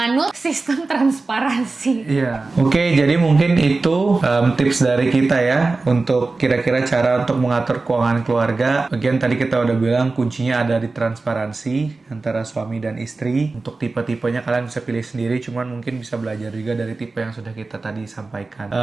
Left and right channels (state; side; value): quieter; left; 3.6 dB